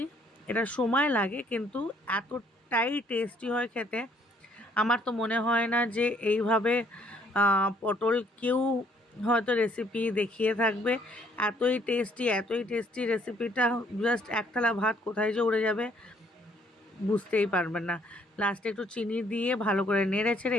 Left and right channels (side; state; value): both; normal; correlation 0.65